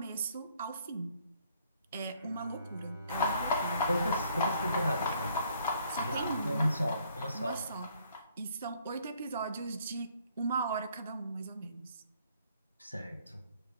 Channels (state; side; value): inverted; both; correlation -0.63